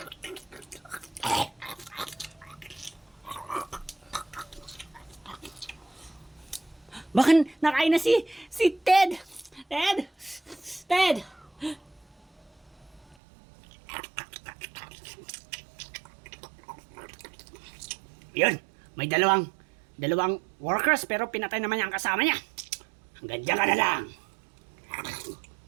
Baka nakain na si Ted. Ted! Ted! Yun, may dalawang workers pero pinatay naman niya ang kasama niya. Hanggang dyan ka na lang.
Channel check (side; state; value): left; drops out; at 13.2 s